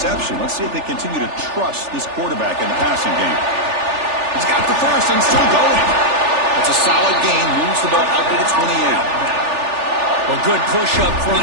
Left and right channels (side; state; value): left; late; 3.4 ms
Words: Let's see if they continue to trust this quarterback in the passing game. He's got the first and still going. It's a solid gain. Moves the ball out to the 28. Well, good push up